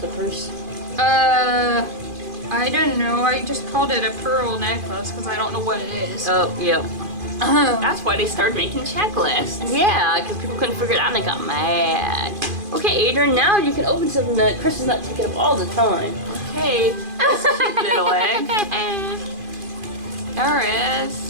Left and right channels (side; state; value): left; late; 2.5 ms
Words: Purse? I don't know. I just called it a pearl necklace because I don't know what it is. Oh, yep. That's why they started making checklists. Yeah, because people couldn't figure it out and they got mad. Okay, Adrian, now you can open something that Chris is not taking up all the time. Okay, this cute little egg. There is.